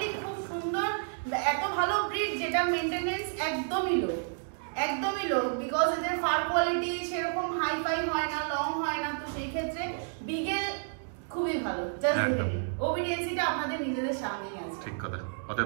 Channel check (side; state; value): left; silent; digital silence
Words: খুব সুন্দর, এত ভালো ব্রিড যেটা মেনটেনেন্স একদমই লো, একদমই লো, বিকজ এদের ফার কোয়ালিটি সেরকম হাই ফাই হয় না, লং হয় না। তো সেই ক্ষেত্রে বিগেল খুবই ভালো, জাস্ট ওবিডিয়েন্সিটা আপনাদের নিজেদের সামনেই আছে। ঠিক কথা।